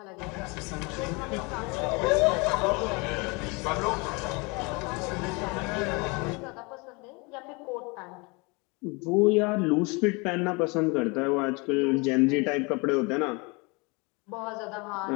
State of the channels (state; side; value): quieter; right; 28.5 dB